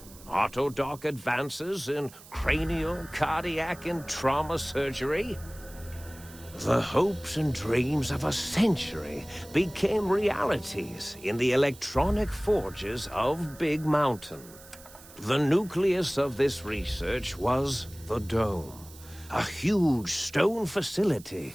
autodoc advances in cranial, cardiac, and trauma surgery. The hopes and dreams of a century became realities in the electronic forges of Big Mountain. The nucleus of this research was the Dome, a huge stone facility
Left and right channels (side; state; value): right; noise; hiss, 20 dB below the sound